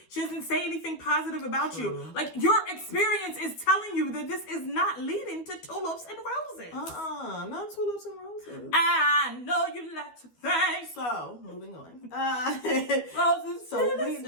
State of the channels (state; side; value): late; right; 12 ms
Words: She doesn't say anything positive about you. Like, your experience is telling you that this is not leading to tulips and roses. Not tulips and roses. I know you like to think. So, moving on. Roses. So, we